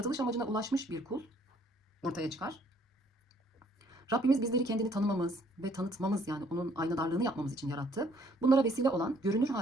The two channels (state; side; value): normal; both; correlation 0.63